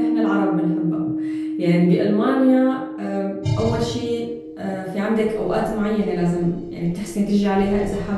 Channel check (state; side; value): identical; both; correlation 1.00